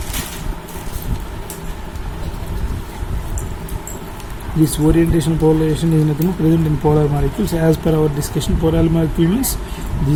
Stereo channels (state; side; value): identical; both; correlation 1.00